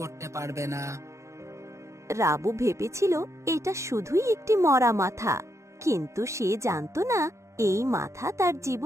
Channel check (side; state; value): left; late; 0.14 ms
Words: পারবে না। রাবু ভেবেছিল এটা শুধুই একটি মরা মাথা, কিন্তু সে জানত না এই মাথা তার